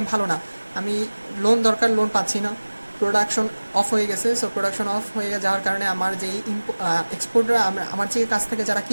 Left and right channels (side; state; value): both; inverted; correlation -1.00